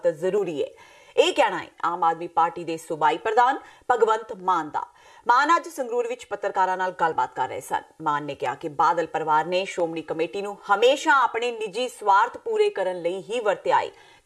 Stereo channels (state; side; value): identical; both; correlation 1.00